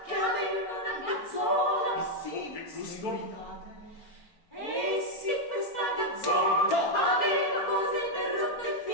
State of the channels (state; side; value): late; right; 4.4 ms